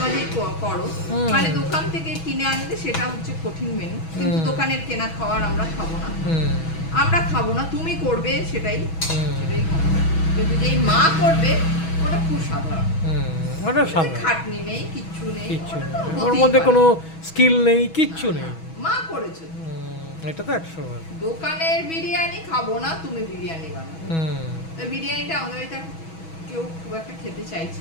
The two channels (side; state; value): right; late; 6.2 ms